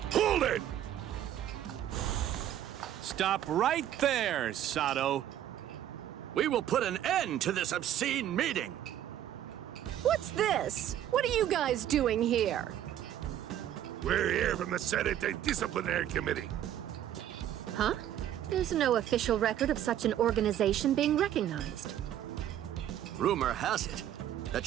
Hold it! Stop right there, Sato. We will put an end to this obscene meeting. What's this? What are you guys doing here? We're here from the Senate Disciplinary Committee. Huh? There's no official record of such an organization being recognized. Rumor has it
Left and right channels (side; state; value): left; quieter; 11.3 dB